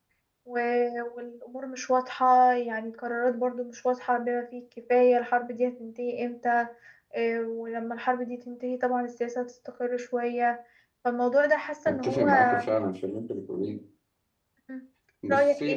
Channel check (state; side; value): identical; both; correlation 1.00